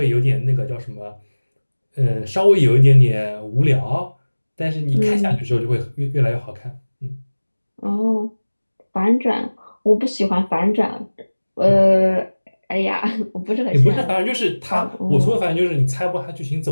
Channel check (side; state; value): both; inverted; correlation -1.00